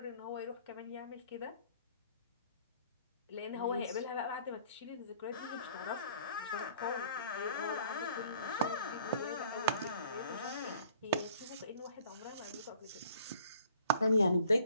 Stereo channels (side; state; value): both; inverted; correlation -0.55